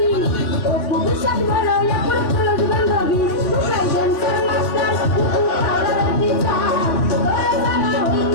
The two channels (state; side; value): late; right; 3.6 ms